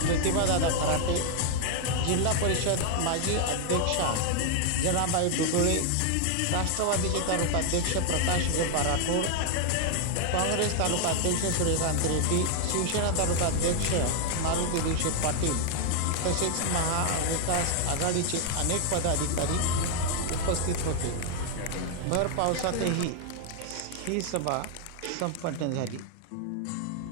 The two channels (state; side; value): different; both; correlation 0.00